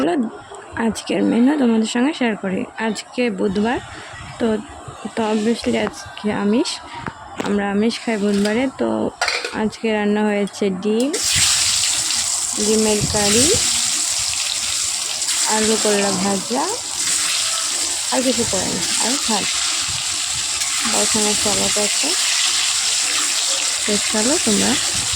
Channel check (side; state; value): both; identical; correlation 1.00